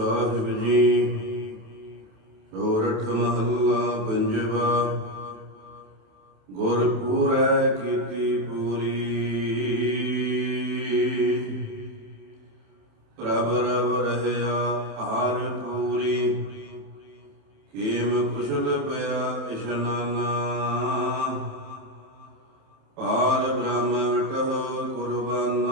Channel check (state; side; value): late; left; 27 ms